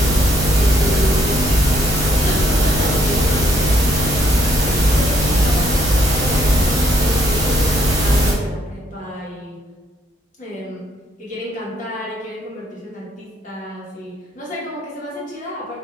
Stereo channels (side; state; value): both; normal; correlation 0.68